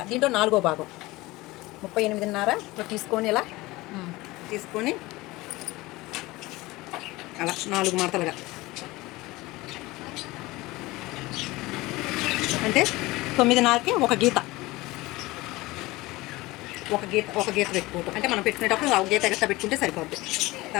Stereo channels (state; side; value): quieter; right; 20.4 dB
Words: దీంట్లో 4వ భాగం 38.5 తీసుకొని ఇలా తీసుకొని అలా 4 మడతలుగా అంటే 9.5కి ఒక గీత పెట్టుకోవటం. అంటే మనం పెట్టుకునేటప్పుడు ఒక గీత ఎక్స్ట్రా పెట్టుకుంటే సరిపోద్ది.